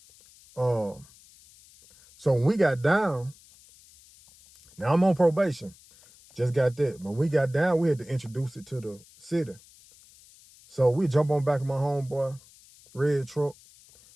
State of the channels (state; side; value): noise; left; hiss, 25 dB below the sound